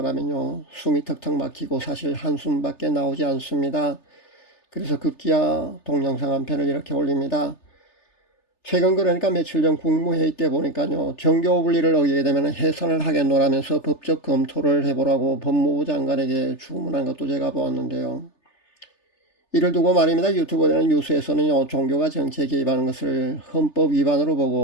숨이 턱턱 막히고 사실 한숨밖에 나오지 않습니다. 그래서 급기야 동영상 한 편을 이렇게 올립니다. 최근 그러니까 며칠 전 국무회의 때 보니까요. 정교 분리를 어기게 되면 해산을 하겠노라면서 법적 검토를 해보라고 법무부 장관에게 주문한 것도 제가 보았는데요. 이를 두고 말입니다. 유튜브나 뉴스에서는요. 종교가 정치에 개입하는 것을 헌법 위반으로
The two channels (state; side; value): late; right; 3.3 ms